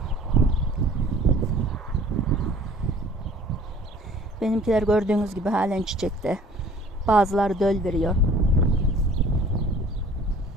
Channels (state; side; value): normal; both; correlation 0.52